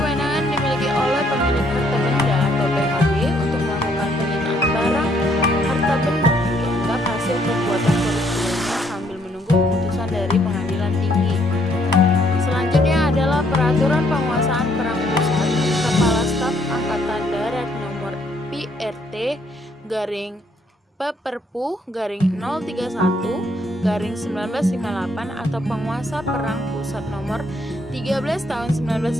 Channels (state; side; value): normal; both; correlation 0.69